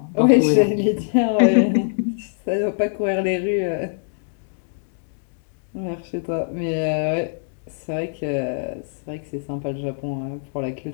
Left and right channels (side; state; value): right; silent; digital silence